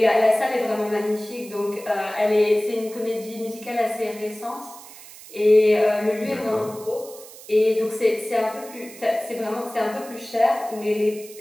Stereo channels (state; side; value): noise; right; hiss, 18 dB below the sound